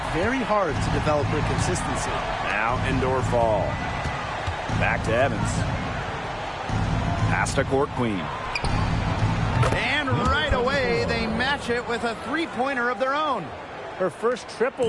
very hard to develop her consistency. Now indoor fall. Back to Evans. Pass to Court Queen. And right away, they match it with a three-pointer of their own. Her first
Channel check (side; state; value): both; identical; correlation 1.00